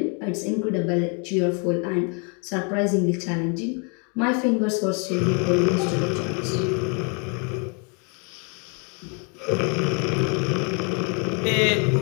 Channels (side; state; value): right; quieter; 36.2 dB